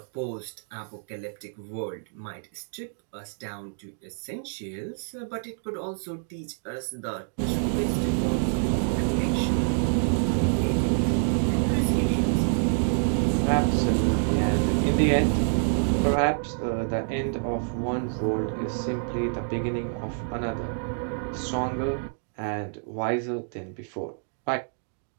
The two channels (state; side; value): silent; left; 60 dB below the other